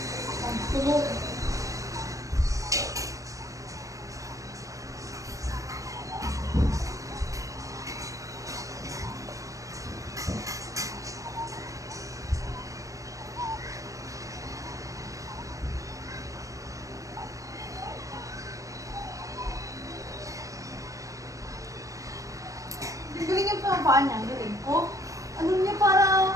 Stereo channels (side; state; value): left; late; 0.16 ms